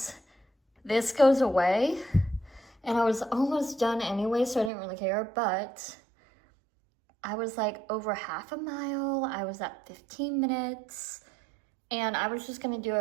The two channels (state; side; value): drops out; left; at 4.7 s